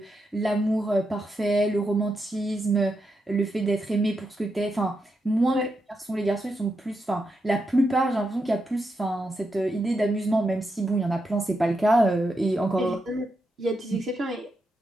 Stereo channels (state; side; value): normal; both; correlation 0.84